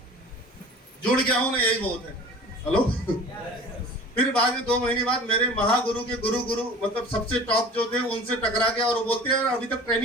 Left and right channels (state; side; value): normal; both; correlation 0.42